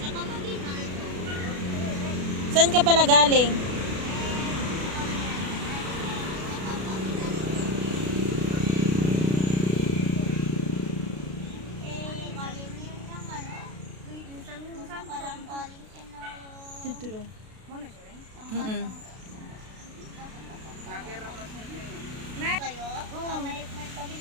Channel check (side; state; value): left; late; 32 ms